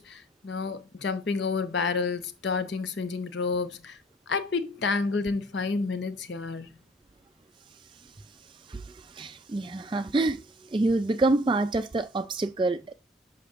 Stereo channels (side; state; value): both; normal; correlation 0.52